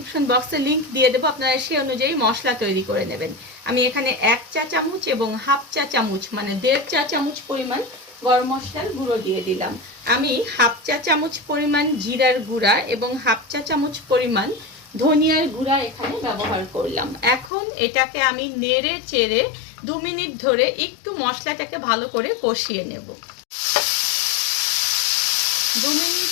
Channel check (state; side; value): drops out; right; at 17.5 s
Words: বক্সে লিংক দিয়ে দেবো, আপনারা সেই অনুযায়ী মশলা তৈরি করে নেবেন। আমি এখানে 1 চা চামচ এবং হাফ চা চামচ মানে 1.5 চা চামচ পরিমাণ গরম মশলার গুঁড়ো দিয়ে দিলাম। আমি হাফ চা চামচ পরিমাণ জিরার গুঁড়া এবং হাফ চা চামচ পরিমাণ ধনিয়ার গুঁড়া এখানে ব্যবহার করলাম। এখন এটাকে আমি নেড়ে চেড়ে 2 মিনিট ধরে একটু মশলাটাকে ভালো করে কষিয়ে নেব। 2 মিনিট